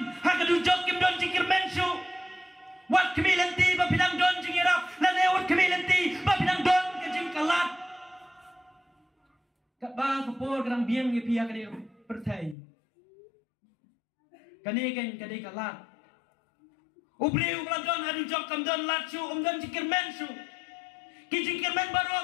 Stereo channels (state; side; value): drops out; right; at 12.6 s